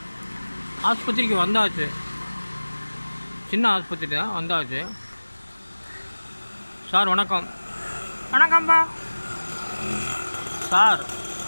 ஆஸ்பத்திரிக்கு வந்தாச்சு, சின்ன ஆஸ்பத்திரி தான், வந்தாச்சு. சார் வணக்கம். வணக்கம்ப்பா. சார்,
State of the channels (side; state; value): both; inverted; correlation -1.00